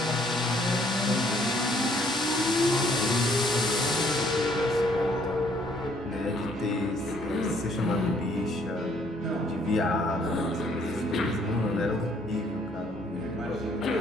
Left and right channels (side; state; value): both; normal; correlation 0.64